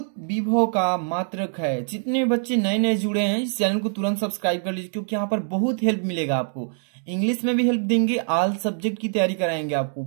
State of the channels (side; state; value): left; silent; digital silence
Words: विभव का मात्रक है। जितने बच्चे नए नए जुड़े हैं इस चैनल को तुरंत सब्सक्राइब कर लीजिए, क्योंकि यहाँ पर बहुत हेल्प मिलेगा आपको। इंग्लिश में भी हेल्प देंगे, ऑल सब्जेक्ट की तैयारी कराएंगे आपको